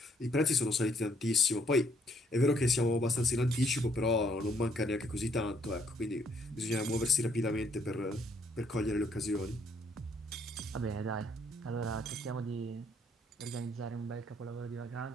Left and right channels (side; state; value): both; normal; correlation 0.68